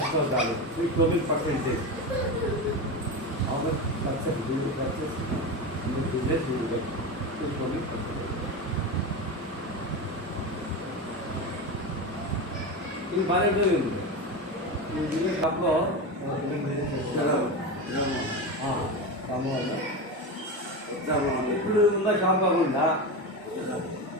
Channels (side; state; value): both; normal; correlation 0.20